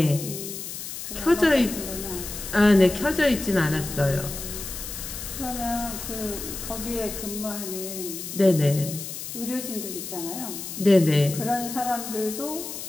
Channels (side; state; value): left; noise; hiss, 8 dB below the sound